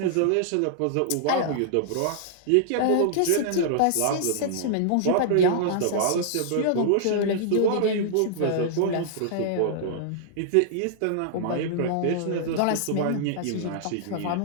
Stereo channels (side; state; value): both; different; correlation -0.01